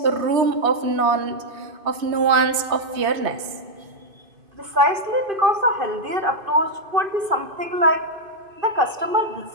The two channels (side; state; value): left; late; 2.5 ms